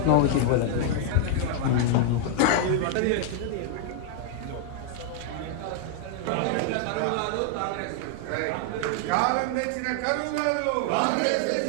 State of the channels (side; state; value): both; different; correlation 0.00